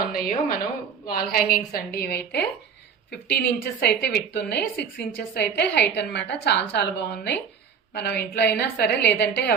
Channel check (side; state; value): left; quieter; 6.7 dB